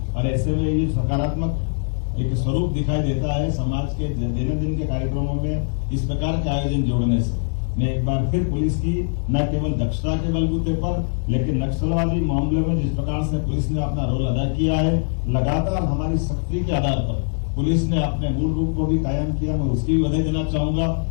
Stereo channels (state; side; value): silent; right; digital silence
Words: और ऐसे में ये सकारात्मक एक स्वरूप दिखाई देता है समाज के दैनंदिन के कार्यक्रमों में इस प्रकार के आयोजन जोड़ने से। मैं एक बार फिर पुलिस की न केवल दक्षता के बलबूते पर लेकिन नक्सलवादी मामले में जिस प्रकार से पुलिस ने अपना रोल अदा किया है, लगातार हमारी सख्ती के आधार पर पुलिस ने अपने मूल रूप को भी कायम किया। मैं उसकी भी बधाई देना चाहूंगा।